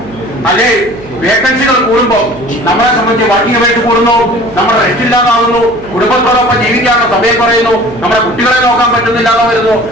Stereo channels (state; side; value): noise; right; hum, 17 dB below the sound